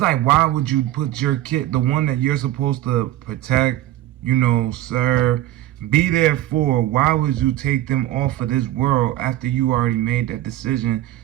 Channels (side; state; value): left; quieter; 14.3 dB